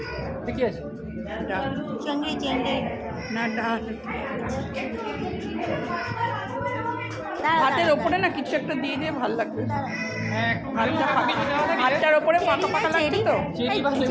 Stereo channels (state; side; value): identical; both; correlation 1.00